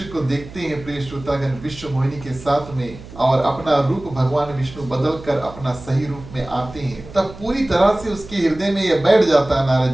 को देखते हैं प्रिय श्रोतागण विश्व मोहिनी के साथ में, और अपना रूप भगवान विष्णु बदल कर अपना सही रूप में आते हैं, तब पूरी तरह से उसके हृदय में यह बैठ जाता है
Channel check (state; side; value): noise; right; hum, 16 dB below the sound